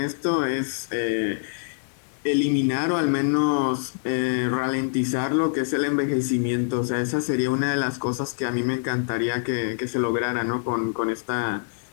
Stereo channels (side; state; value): right; silent; digital silence